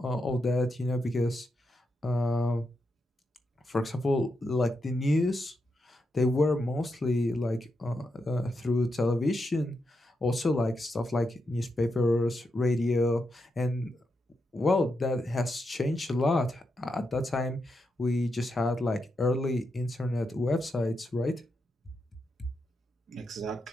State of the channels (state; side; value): normal; both; correlation 0.84